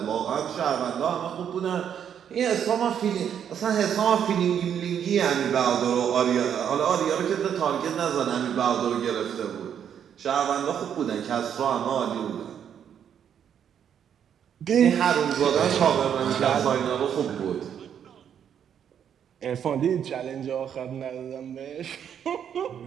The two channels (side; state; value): left; quieter; 8.7 dB